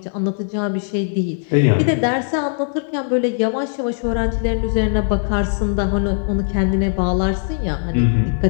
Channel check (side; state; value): right; silent; digital silence